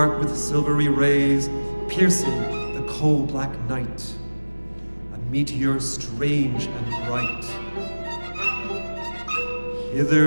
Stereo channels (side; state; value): both; inverted; correlation -1.00